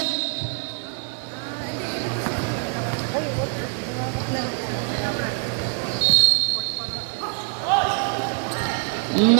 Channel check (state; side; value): quieter; left; 39.5 dB